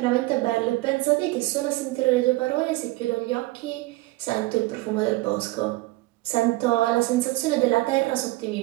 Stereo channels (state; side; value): quieter; left; 20.4 dB